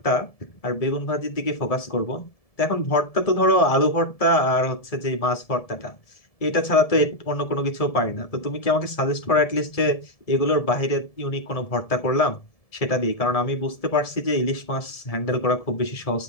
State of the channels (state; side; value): late; right; 1.7 ms